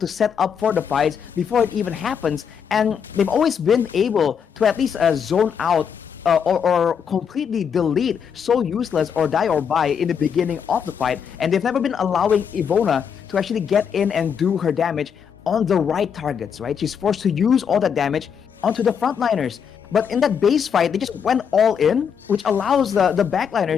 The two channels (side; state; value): right; quieter; 7.3 dB